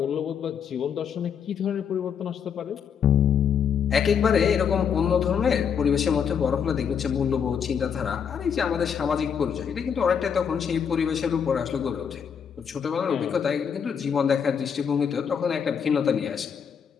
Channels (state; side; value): quieter; right; 7.4 dB